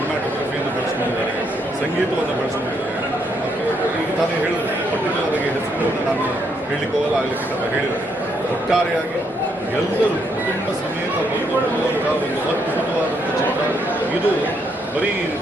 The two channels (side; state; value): both; normal; correlation 0.75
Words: ಬೆಳೆಸ್ಕೊಂಡಿದ್ದಾರೆ, ಸಂಗೀತವನ್ನು ಬೆಳೆಸ್ಕೊಂಡಿದ್ದಾರೆ. ಈಗ ತಾನೇ ಹೇಳಿದ್ರು, ಪರ್ಟಿಕ್ಯುಲರ್ ಆಗಿ ಹೆಸರುಗಳನ್ನು ನಾನು ಹೇಳಲಿಕ್ಕೆ ಹೋಗಲ್ಲ, ಆಗಲಿಕ್ಕೆ ಹೇಳಿದ್ದಾರೆ. ಒಟ್ಟಾರೆಯಾಗಿ ಎಲ್ಲರೂ ಕುಟುಂಬ ಸಮೇತ ಬಂದು ನೋಡುವಂಥ ಒಂದು ಅದ್ಭುತವಾದಂಥ ಚಿತ್ರ ಇದು. ಬರೀ